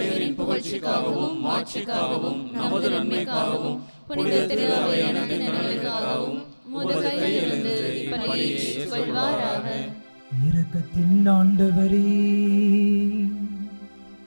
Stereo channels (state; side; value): inverted; both; correlation -1.00